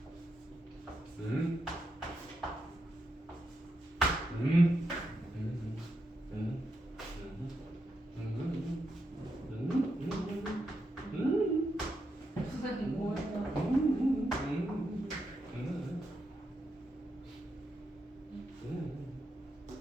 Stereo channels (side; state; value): both; normal; correlation 0.83